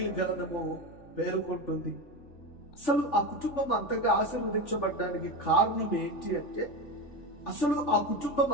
గ్రంథము పేర్కొంటుంది. అసలు ఆ కుటుంబం అంతగా ఆశీర్వదించబడడానికి కారణం ఏంటి అంటే, అసలు ఆ కుటుంబం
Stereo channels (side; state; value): right; late; 3.4 ms